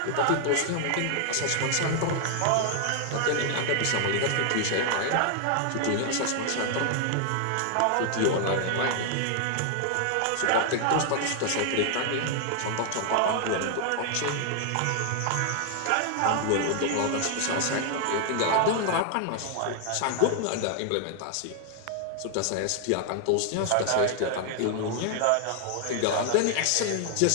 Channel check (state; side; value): different; both; correlation 0.00